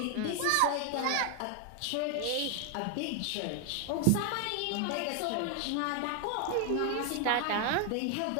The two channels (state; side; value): different; both; correlation 0.01